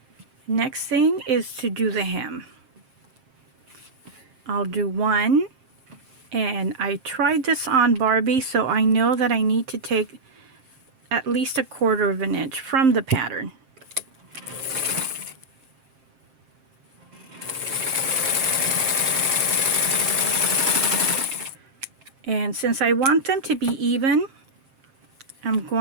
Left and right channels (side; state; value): left; late; 7.6 ms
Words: Next thing is to do the hem. I'll do one, and I tried this on Barbie, so I know that I need to take at least 1/4 of an inch from the pattern. And since I want them to be even, I'm